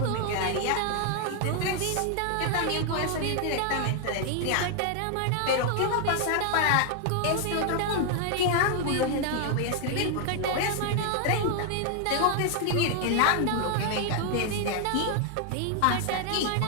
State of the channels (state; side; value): different; both; correlation 0.00